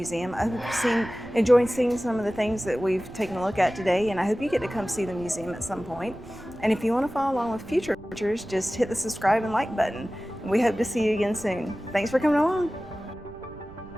I hope you've enjoyed seeing some of the things that we've taken a look at today, and I hope you get to come see the museum at some point. And if you want to follow along with future tours, just hit the subscribe and like button. And we hope to see you again soon. Thanks for coming along.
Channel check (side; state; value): right; noise; rumble, 19 dB below the sound